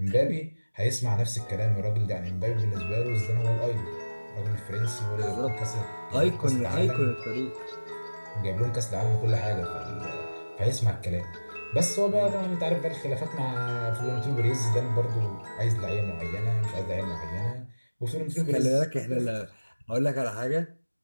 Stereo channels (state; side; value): inverted; both; correlation -1.00